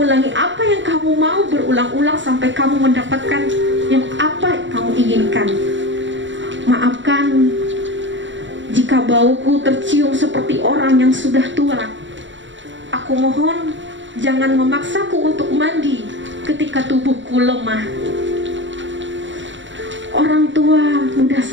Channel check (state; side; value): late; left; 0.54 ms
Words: apa yang kamu mau berulang-ulang sampai kamu mendapatkan yang apa kamu inginkan. Maafkan jika bauku tercium seperti orang yang sudah tua. Aku mohon jangan memaksaku untuk mandi ketika tubuhku lemah. Orang tua mudah